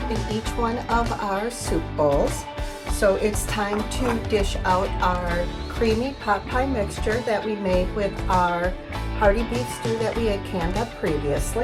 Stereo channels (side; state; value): both; identical; correlation 1.00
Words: in each one of our soup bowls. So it's time to dish out our creamy pot pie mixture that we made with our hearty beef stew that we had canned up